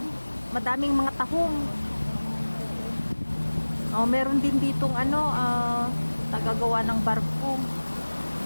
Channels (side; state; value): both; inverted; correlation -1.00